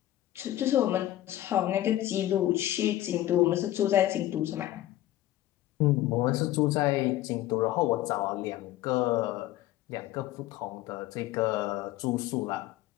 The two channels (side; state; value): right; quieter; 14.4 dB